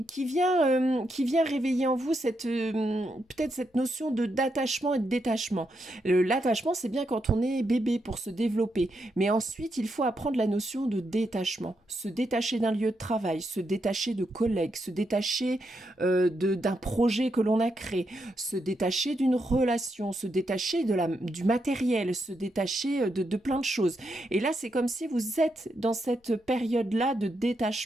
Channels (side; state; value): both; normal; correlation 0.82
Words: qui vient réveiller en vous peut-être cette notion d'attachement et de détachement. L'attachement, c'est bien quand on est bébé pour se développer, mais ensuite, il faut apprendre la notion de détachement. Se détacher d'un lieu de travail, se détacher de collègues, se détacher d'un projet que l'on a créé, se détacher d'une relation, se détacher du matériel, se détacher de plein de choses. Et là, c'est comme si vous êtes dans cette période-là de